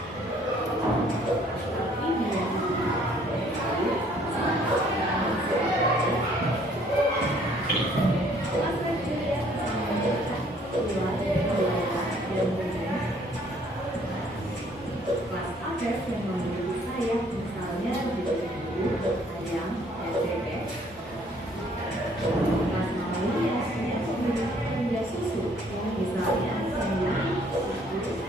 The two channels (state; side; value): normal; both; correlation 0.61